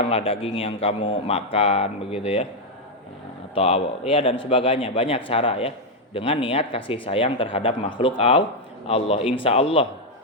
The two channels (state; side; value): normal; both; correlation 0.01